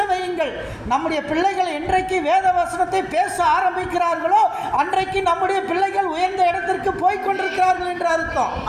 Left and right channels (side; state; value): both; identical; correlation 1.00